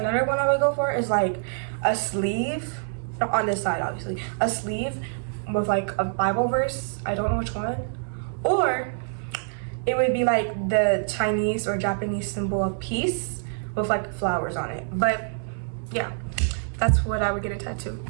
one I would go for is like a sleeve, not on this side obviously, a sleeve with like a Bible verse. I don't know which one. Or it would be like the Chinese or Japanese symbol of peace with like flowers on it. But yeah, that's what I would get a tattoo.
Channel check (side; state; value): left; silent; digital silence